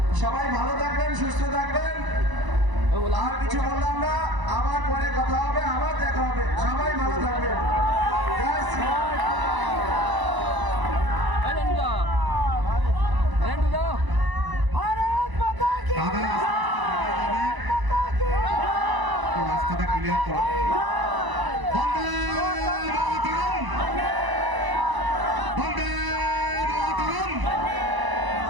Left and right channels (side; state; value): left; late; 1.0 ms